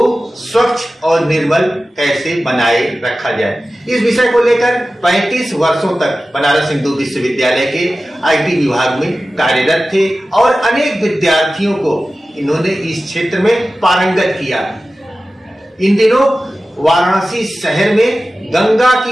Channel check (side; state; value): both; normal; correlation 0.95